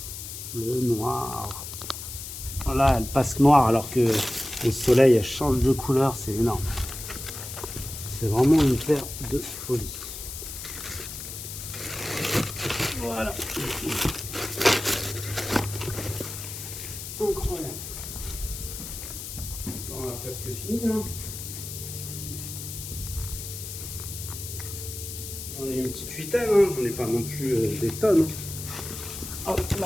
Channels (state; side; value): noise; left; hiss, 9 dB below the sound